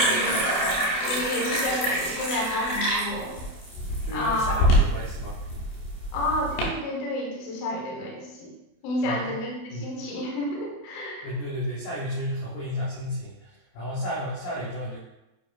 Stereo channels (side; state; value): right; late; 28 ms